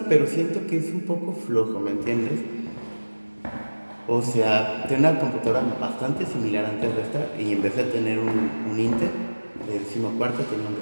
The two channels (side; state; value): both; inverted; correlation -1.00